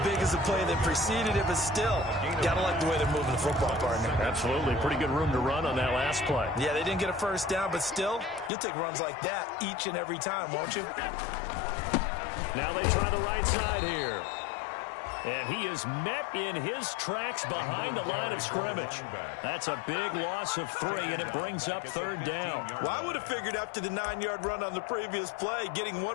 big as the play that preceded it, but still, gotta like the way they're moving the football, partner. Absolutely. Pretty good room to run on that last play. Yeah, they didn't get a first down, but still, you'll take runs like that each and every time, won't you? Now they try the right side here. And he is met in his tracks behind the line of scrimmage. That's a big loss of 3, and it brings up 3rd down. Well, I would have figured after the 9-yard run on the previous play, getting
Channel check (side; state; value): right; drops out; at 8.5 s